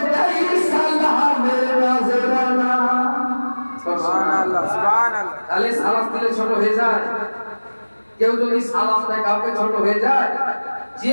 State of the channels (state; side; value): inverted; both; correlation -1.00